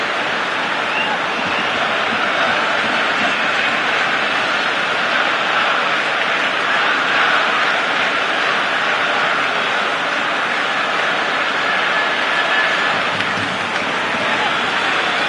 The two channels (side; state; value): both; identical; correlation 1.00